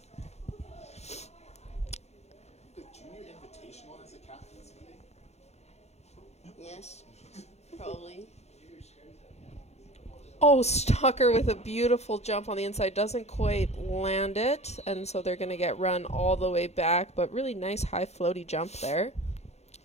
Yes, probably. Oh, Stalker with a beautiful jump on the inside. Doesn't quite land it, and so they're going to get run all the way back, but really nice high floaty jump there.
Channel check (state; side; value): late; right; 0.31 ms